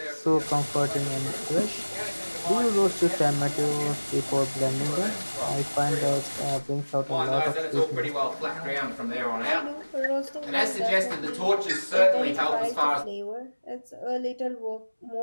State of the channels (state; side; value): inverted; both; correlation -1.00